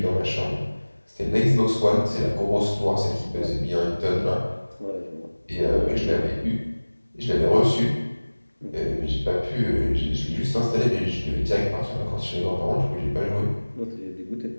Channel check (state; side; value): inverted; both; correlation -1.00